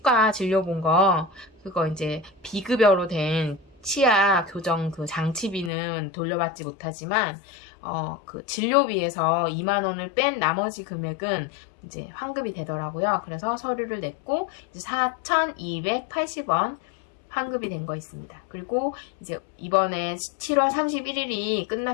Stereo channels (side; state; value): right; drops out; at 5.7 s